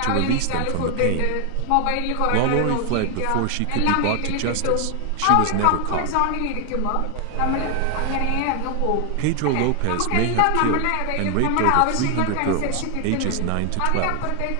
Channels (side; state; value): both; different; correlation 0.00